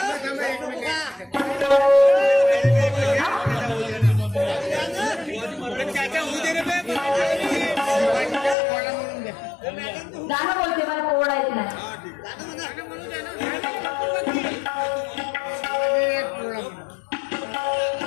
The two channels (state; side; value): drops out; right; at 8.6 s